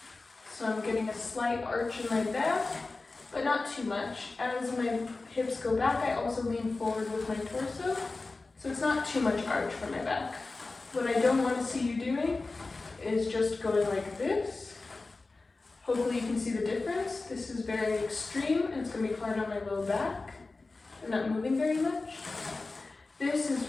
So I'm getting a slight arch in my back, but not too much. As my hips go back, I also lean forward with my torso, so it's not too much arch for my back. What I don't want to see you doing is just going like this. Hopefully you can see the difference. This is very extreme, and it's going to be hard on my low back. I'm not moving very much. This is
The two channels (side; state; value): right; quieter; 3.6 dB